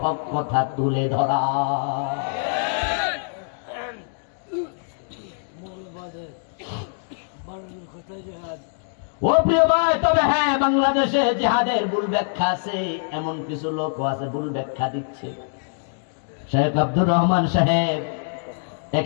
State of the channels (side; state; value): right; silent; digital silence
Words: হক কথা তুলে ধরা। ও প্রিয় ভাই, তবে হ্যাঁ, বাংলাদেশে জিহাদের ভুল ব্যাখ্যা আছে, এমন কিছু লোকও আছে ভুল ব্যাখ্যা দিচ্ছে। শেখ আব্দুর রহমান সাহেব